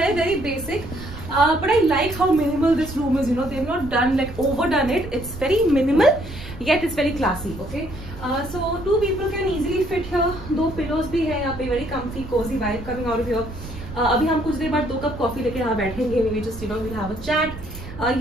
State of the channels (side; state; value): right; noise; rumble, 12 dB below the sound